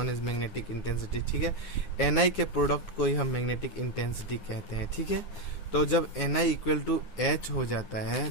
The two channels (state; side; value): late; right; 9.6 ms